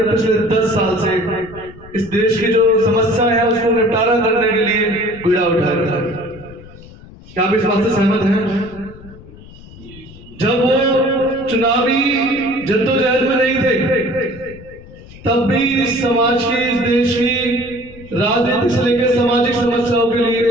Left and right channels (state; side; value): noise; left; rumble, 19 dB below the sound